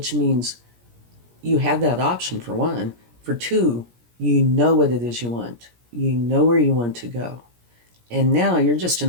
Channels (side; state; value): left; late; 17 ms